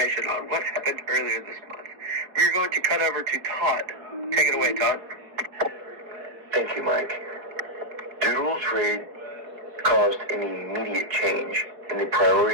on what happened earlier this month, we are going to cut over to Todd. Take it away, Todd. Thank you, Mike. Doolittle's raid caused an immediate change in the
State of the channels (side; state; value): left; late; 4.7 ms